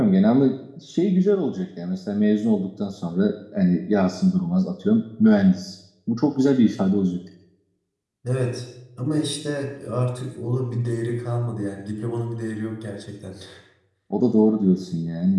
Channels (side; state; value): both; identical; correlation 1.00